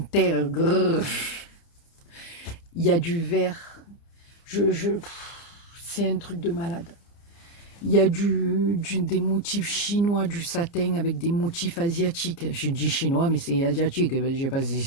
Grrr. Il y a du vert. C'est un truc de malade. Il y a des motifs chinois, du satin avec des motifs asiatiques. Je dis chinois, mais c'est asiatique. Je ne sais pas si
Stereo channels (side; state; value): right; late; 29 ms